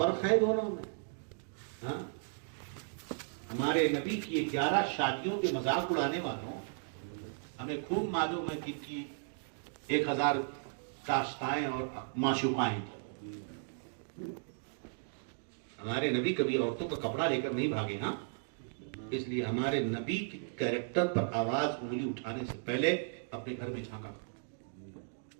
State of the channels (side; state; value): left; silent; digital silence